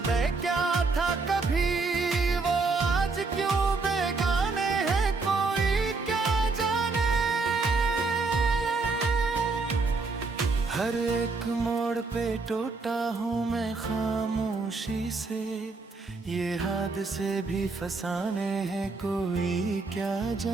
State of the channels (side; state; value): left; quieter; 4.0 dB